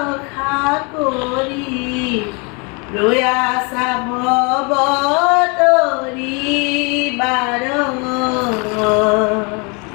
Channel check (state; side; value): quieter; right; 31.5 dB